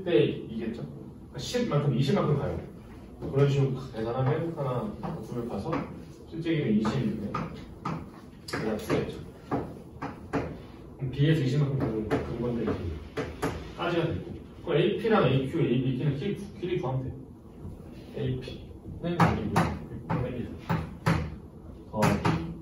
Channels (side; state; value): both; identical; correlation 1.00